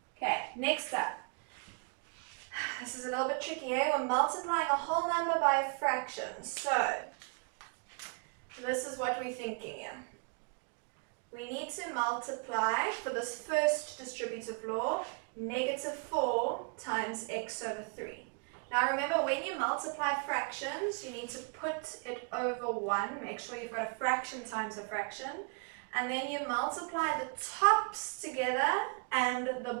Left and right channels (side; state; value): left; quieter; 37.7 dB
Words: Okay, next up. This is a little bit tricky here. We're multiplying a whole number by a fraction. So this is what we're thinking here. We need to multiply, for this first distributive law, -4 times x over 3. Now remember, when you multiply fractions, you need to put it over 1. Make sure you've got a fraction times a fraction. And then you multiply the tops together and